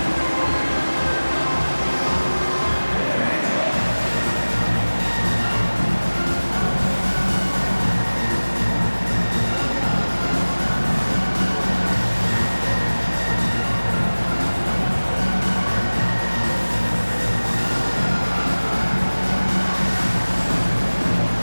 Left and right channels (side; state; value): both; inverted; correlation -1.00